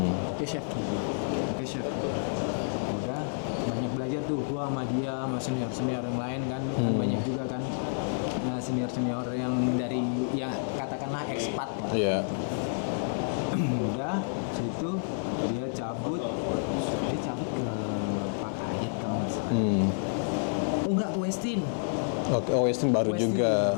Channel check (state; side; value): silent; right; digital silence